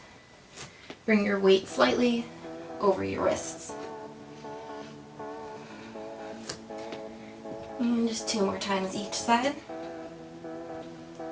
bring your weight slightly over your wrists. And just 2 more times each side.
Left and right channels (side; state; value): both; identical; correlation 1.00